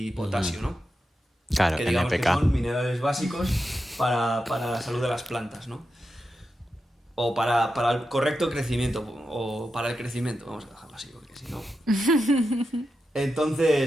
potasio, ¿no? Claro, que digamos NPK. que son minerales básicos para la salud de las plantas, ¿no? O para el correcto crecimiento, o para el crecimiento, vamos a dejarlo así, porque si no...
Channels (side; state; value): both; normal; correlation 0.89